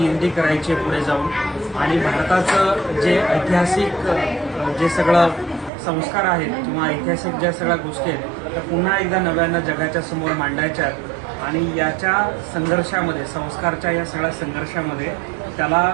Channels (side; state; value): left; drops out; at 5.7 s